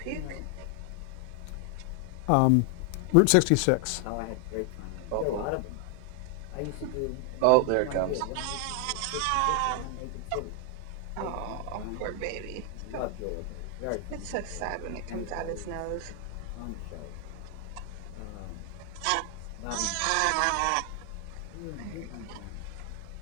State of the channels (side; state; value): both; different; correlation 0.00